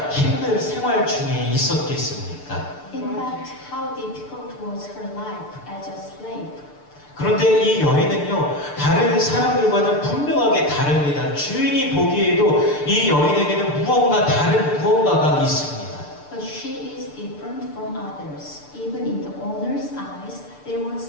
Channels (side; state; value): right; late; 6.8 ms